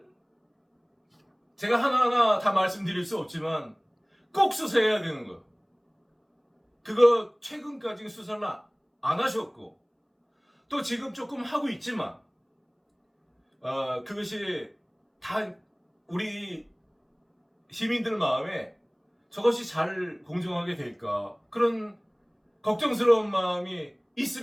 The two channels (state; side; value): identical; both; correlation 1.00